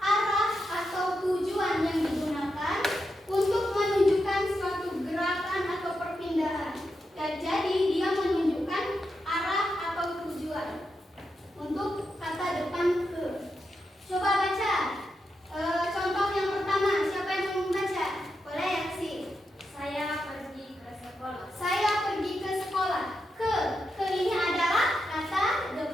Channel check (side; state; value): both; normal; correlation 0.86